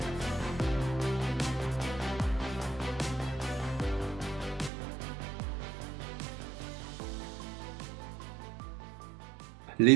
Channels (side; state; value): left; drops out; at 4.7 s